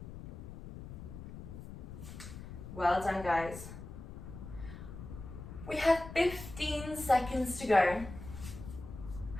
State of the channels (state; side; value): noise; left; rumble, 11 dB below the sound